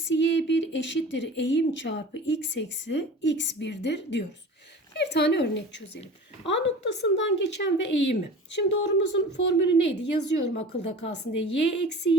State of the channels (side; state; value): both; normal; correlation 0.38